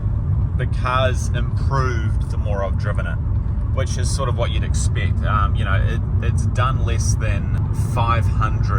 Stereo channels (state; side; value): identical; both; correlation 1.00